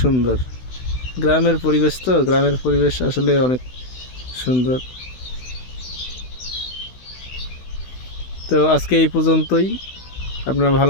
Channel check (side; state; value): right; late; 16 ms